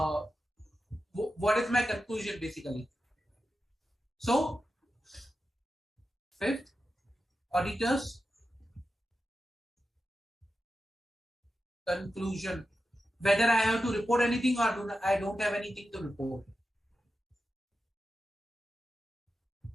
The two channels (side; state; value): both; normal; correlation 0.91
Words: what is my conclusion basically. So, fifth, auditors conclusion. Whether I have to report anything or I don't have anything to report.